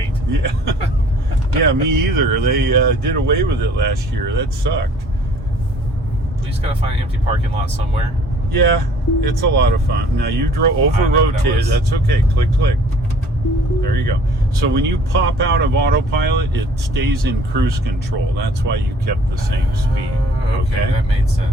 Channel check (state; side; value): normal; both; correlation 0.54